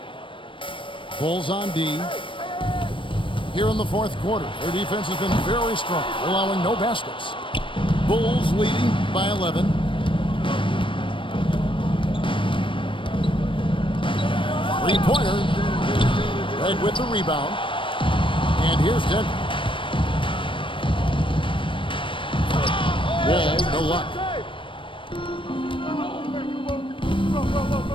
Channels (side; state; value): right; late; 0.25 ms